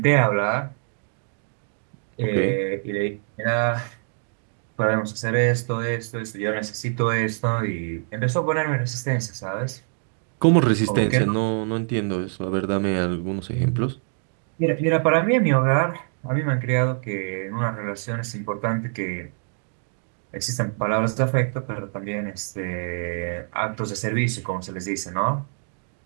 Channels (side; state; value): left; silent; 62 dB below the other